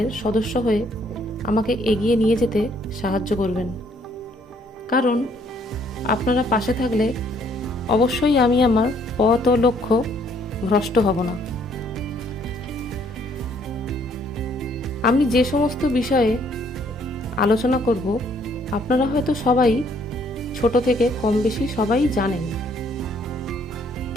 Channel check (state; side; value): normal; both; correlation 0.65